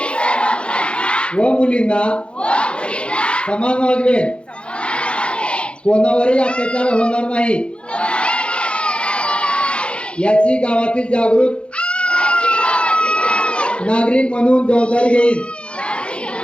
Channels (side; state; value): right; late; 0.057 ms